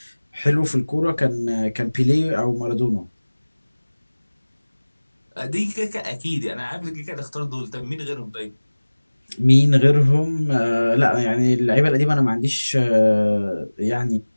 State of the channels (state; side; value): inverted; both; correlation -1.00